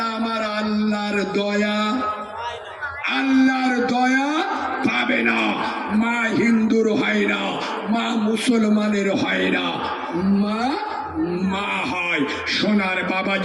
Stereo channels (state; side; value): identical; both; correlation 1.00